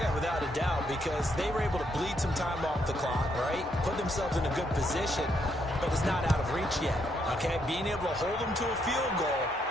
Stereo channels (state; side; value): normal; both; correlation 0.75